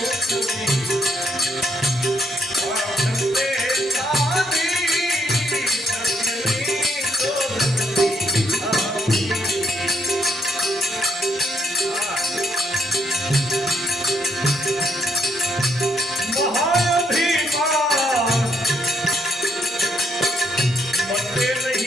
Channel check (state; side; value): normal; both; correlation 0.72